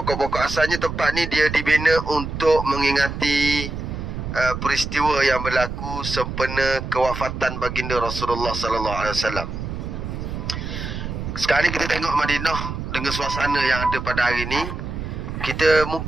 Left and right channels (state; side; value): noise; right; rumble, 6 dB below the sound